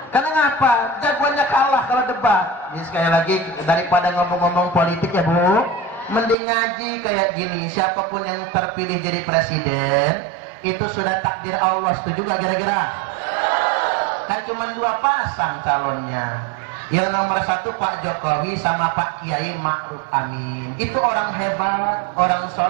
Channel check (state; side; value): drops out; left; at 6.4 s